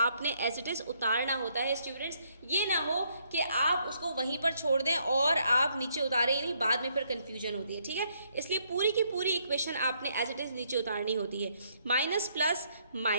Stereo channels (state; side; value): inverted; both; correlation -0.71